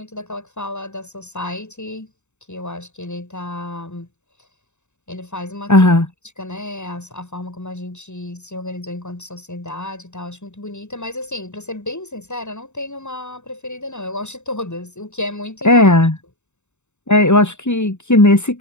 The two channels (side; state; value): right; late; 0.83 ms